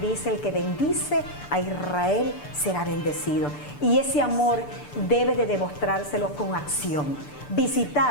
dice: el que bendice a Israel será bendecido. Y ese amor debe de demostrárselo con acción.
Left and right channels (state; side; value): late; right; 6.8 ms